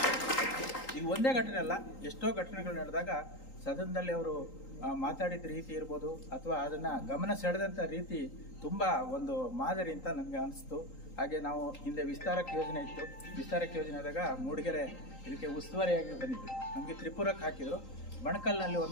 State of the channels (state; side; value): late; right; 3.8 ms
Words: ಇದು ಒಂದೇ ಘಟನೆ ಅಲ್ಲ, ಎಷ್ಟೋ ಘಟನೆಗಳು ನಡೆದಾಗ ಸದನದಲ್ಲಿ ಅವರು ಮಾತಾಡಿದ ರೀತಿ ಇರ್ಬೋದು ಅಥವಾ ಅದನ್ನು ಗಮನ ಸೆಳೆದಂಥ ರೀತಿ ತುಂಬ ಒಂದು ಮಾದರಿ ಅಂತ ನನಗೆ ಅನಿಸ್ತು. ಹಾಗೆ ನಾವು ಹಿಂದೆ ವಿಸ್ತಾರಕ್ಕೆ ಯೋಜನೆ ಇತ್ತು, ವಿಸ್ತಾರಕ್ಕೆ ಯೋಜನೆ ಆದಾಗ ಮೂಡಿಗೆರೆ ಇದಕ್ಕೆ ಉಸ್ತುವಾರಿಯಾಗಿ ಬಂದಿದ್ದು. ನಮಗೆ ತ್ರಿಪುರಕ್ಕೆ ಹಾಕಿದರು. ಬಣಕಲ್ನಲ್ಲಿ